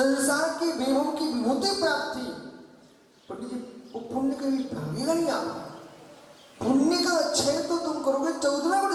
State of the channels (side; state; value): both; identical; correlation 1.00